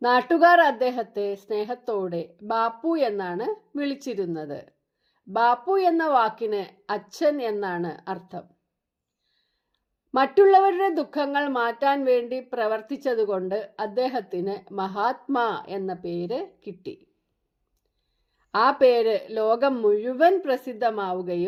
നാട്ടുകാർ അദ്ദേഹത്തെ സ്നേഹത്തോടെ ബാപ്പു എന്നാണ് വിളിച്ചിരുന്നത്. ബാപ്പു എന്ന വാക്കിന് അച്ഛൻ എന്നാണ് അർത്ഥം. മറ്റുള്ളവരുടെ ദുഃഖങ്ങൾ മാറ്റാൻ വേണ്ടി പ്രവർത്തിച്ചതുകൊണ്ട് അദ്ദേഹത്തിന് മഹാത്മാ എന്ന പേര് കിട്ടി. ആ പേര് ലോകം മുഴുവൻ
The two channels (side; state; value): both; identical; correlation 1.00